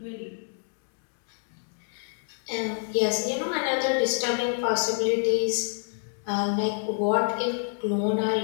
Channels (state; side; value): silent; right; 60 dB below the other